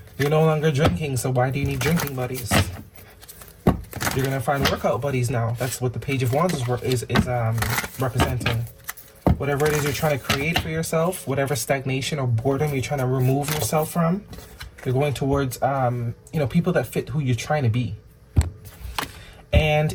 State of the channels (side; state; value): both; identical; correlation 1.00